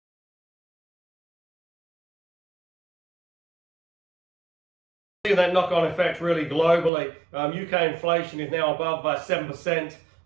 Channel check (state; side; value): drops out; left; at 6.9 s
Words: That knock-on effect really globally. UK inflation is now above 7%.